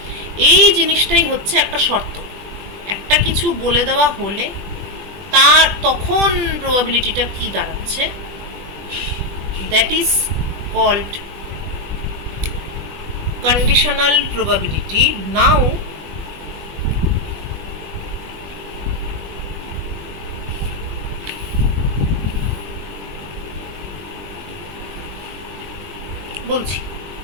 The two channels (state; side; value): late; left; 20 ms